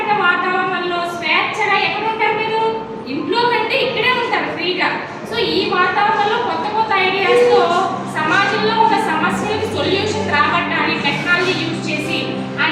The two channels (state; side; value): identical; both; correlation 1.00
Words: వాతావరణంలో స్వేచ్ఛగా ఎక్కడ ఉంటారు మీరు? ఇంట్లో కంటే ఇక్కడే ఉంటారు ఫ్రీగా. సో ఈ వాతావరణంలో కొత్త కొత్త ఐడియాస్తో సమాజంలో ఉన్న సమస్యలకు సొల్యూషన్ రాబట్టాలి టెక్నాలజీ యూజ్ చేసి